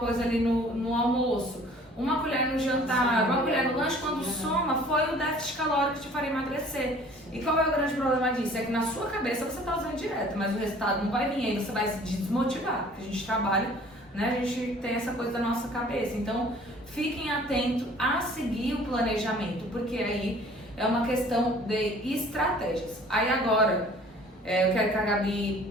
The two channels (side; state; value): both; normal; correlation 0.51